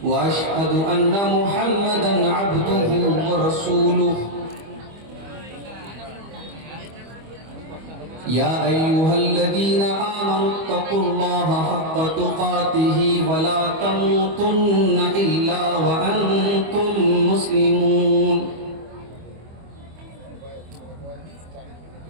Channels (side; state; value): left; late; 25 ms